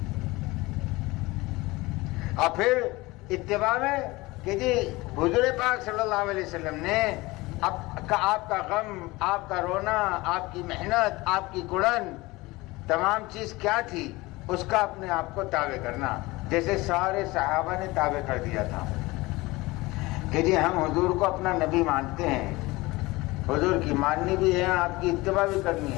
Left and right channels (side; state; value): right; quieter; 21.4 dB